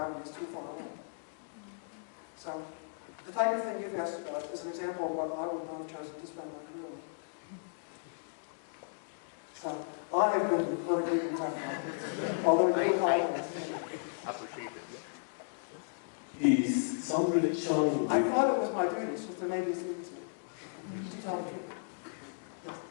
is too far away. So, the type of thing you've asked about is an example of what I would not have chosen to spend my career on. So, I have been politically incorrect, although I appreciate it. Is some relation with... I thought it was my duty, so there may be students to tell the truth.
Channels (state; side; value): silent; right; digital silence